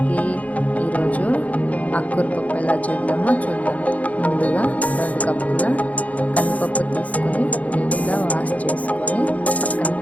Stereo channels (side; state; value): right; late; 0.070 ms